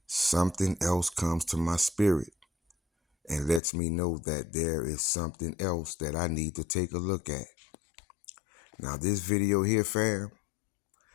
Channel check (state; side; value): drops out; right; at 3.6 s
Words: something else comes to my spirit and lets me know that there is something else that I need to take a look at. Now, this video here, fam,